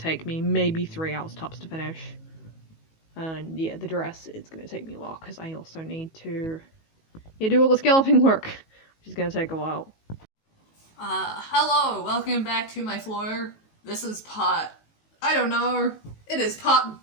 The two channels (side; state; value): right; late; 19 ms